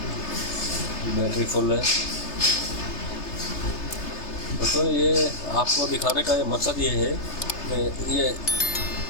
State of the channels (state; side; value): late; right; 3.3 ms